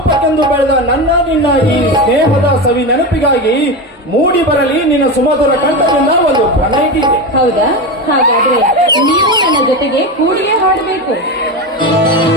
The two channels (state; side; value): normal; both; correlation 0.19